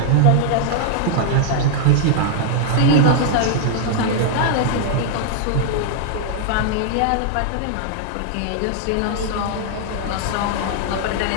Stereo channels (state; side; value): different; both; correlation 0.00